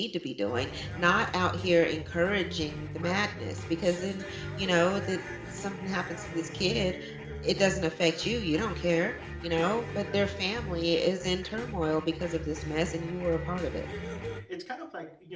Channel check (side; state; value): both; identical; correlation 1.00